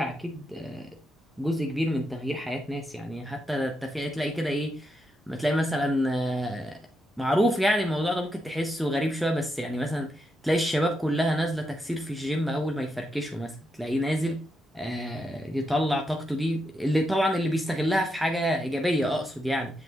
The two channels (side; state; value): both; normal; correlation 0.83